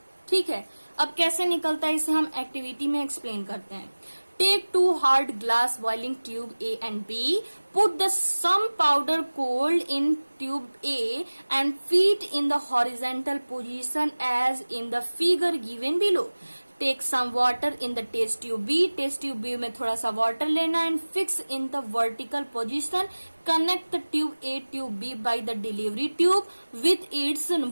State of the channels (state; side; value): inverted; both; correlation -1.00